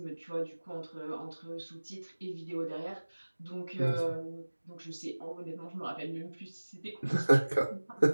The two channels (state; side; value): inverted; both; correlation -1.00